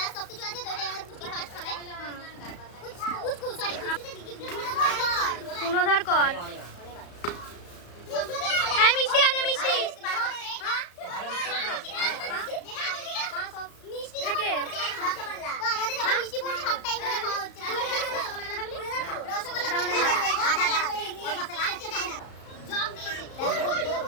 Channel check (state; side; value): late; right; 34 ms